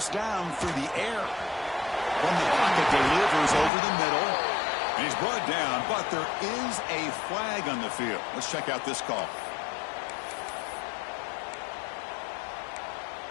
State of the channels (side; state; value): right; drops out; at 3.7 s